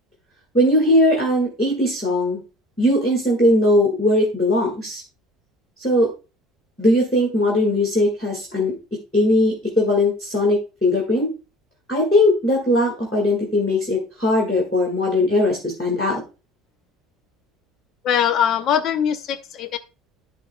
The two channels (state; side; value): normal; both; correlation 0.44